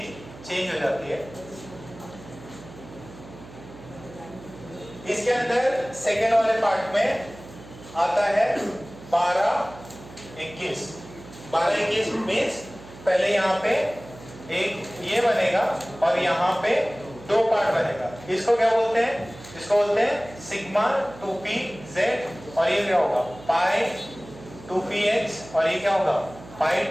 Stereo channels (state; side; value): noise; right; hum, 18 dB below the sound